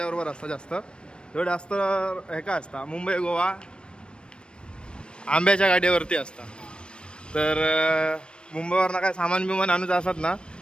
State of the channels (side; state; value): right; late; 0.055 ms